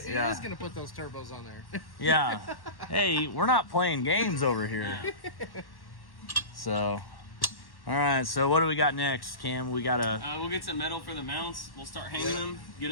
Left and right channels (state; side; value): late; right; 1.1 ms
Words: He Yeah. is gonna put those turbos on there. Yeah. Hey, we're not playing games over here. Yeah. So, all right. So what do we got next, Cam? We got We'll get some metal for the mounts. We'll start hanging them, get